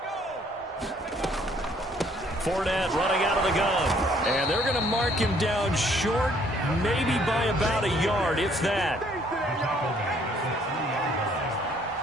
Fournette running out of the gun. And they're going to mark him down short, maybe by about a yard, if that.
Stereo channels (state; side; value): normal; both; correlation 0.63